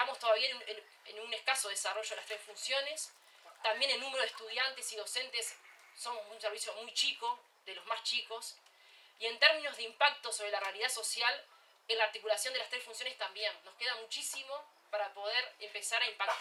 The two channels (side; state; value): both; identical; correlation 1.00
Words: todavía en un escaso desarrollo de las 3 funciones. También el número de estudiantes y docentes son un servicio muy chico, de los más chicos. Y en términos de impacto sobre la realidad social, en la articulación de las 3 funciones también. Nos queda muchísimo para poder empezar a